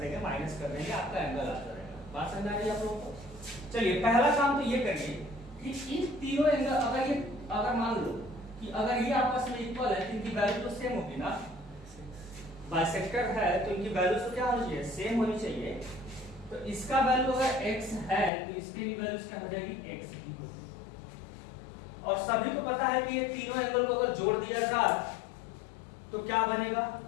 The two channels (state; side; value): drops out; right; at 18.3 s